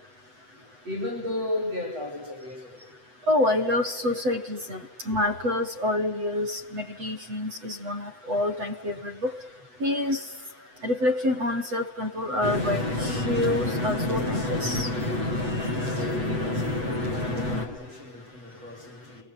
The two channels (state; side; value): late; left; 8.0 ms